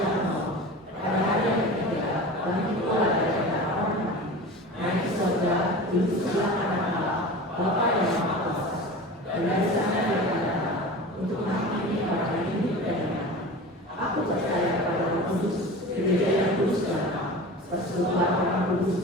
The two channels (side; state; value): both; normal; correlation 0.34